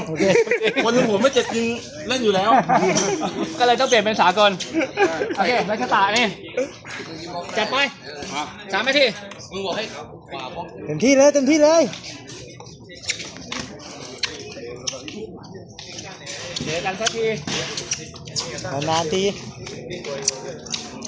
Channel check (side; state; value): both; identical; correlation 1.00